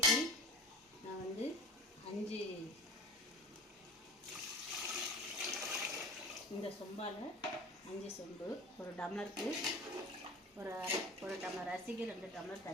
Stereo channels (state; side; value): normal; both; correlation 0.37